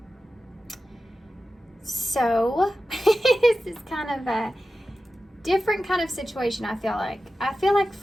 So this is kind of a different kind of situation, I feel like. I feel like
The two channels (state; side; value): normal; both; correlation 0.93